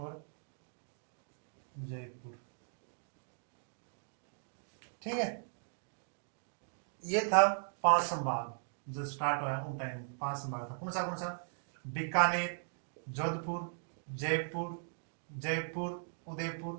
जयपुर। ठीक है। ये था 5 संभाग जो स्टार्ट हुआ उन टाइम 5 संभाग था। कौन सा बीकानेर, जोधपुर, जयपुर,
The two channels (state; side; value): silent; left; digital silence